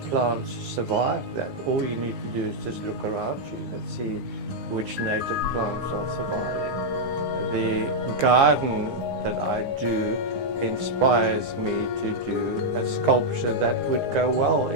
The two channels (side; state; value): left; late; 9.8 ms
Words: plants survive that. All you need to do is just look around you and see which native plants are surviving. The garden that I do inspires me to do a sculpture that would go well